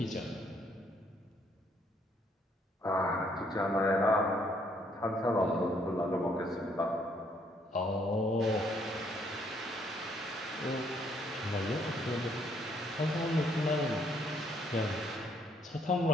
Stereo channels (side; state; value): both; normal; correlation 0.68